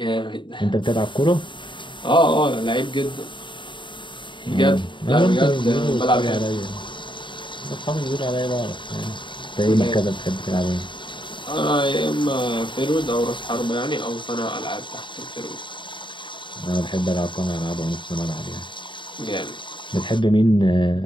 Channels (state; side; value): late; right; 0.23 ms